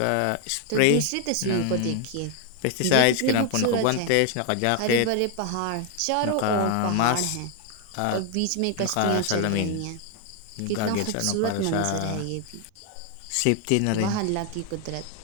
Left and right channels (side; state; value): both; different; correlation 0.01